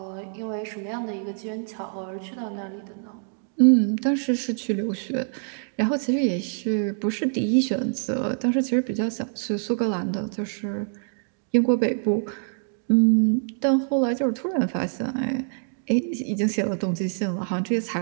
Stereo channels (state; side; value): silent; left; 61 dB below the other